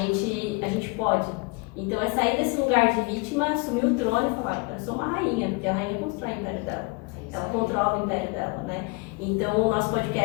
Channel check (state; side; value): quieter; right; 27.1 dB